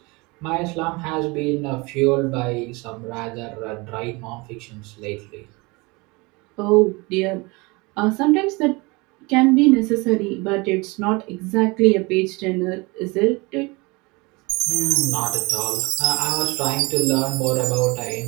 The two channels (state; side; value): quieter; left; 25.8 dB